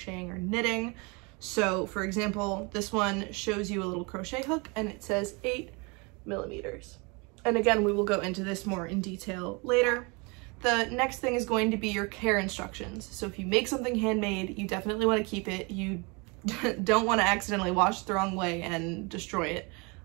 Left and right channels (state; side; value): quieter; left; 29.4 dB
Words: or knitting. So for example, this one shows you a little crochet hook and it says 8 millimeters. And again, we will go into this more in detail later. The next thing is going to be your care instructions. So if you make something handmade, you definitely want to keep it. You don't want to accidentally wash it the wrong way and destroy it.